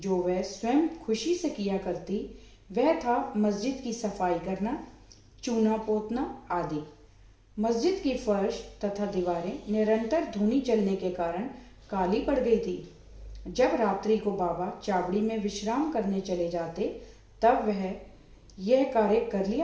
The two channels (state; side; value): identical; both; correlation 1.00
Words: वह स्वयं खुशी से किया करती वह था मस्जिद की सफाई करना, चूना पोतना आदि। मस्जिद की फर्श तथा दीवारें निरंतर धूनी चलने के कारण काली पड़ गई थी। जब रात्रि को बाबा चावड़ी में विश्राम करने चले जाते तब वह यह कार्य कर